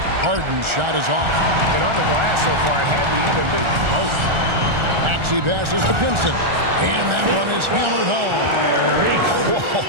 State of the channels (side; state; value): left; late; 1.4 ms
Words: Harden's shot is off. And on the glass so far, it hadn't even been close. Maxey passes to Pinson. And that one is hammered home. Whoa,